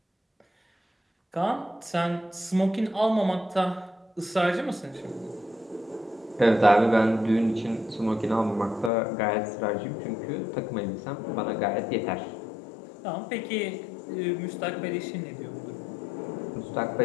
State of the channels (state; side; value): drops out; right; at 8.9 s